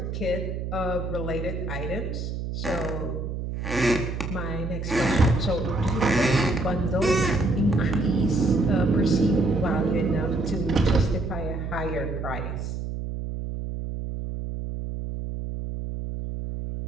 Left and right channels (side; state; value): right; noise; hum, 5 dB below the sound